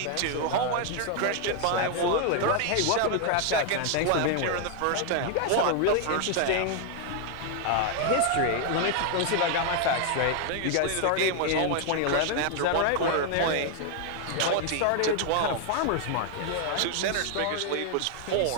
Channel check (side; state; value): both; different; correlation 0.00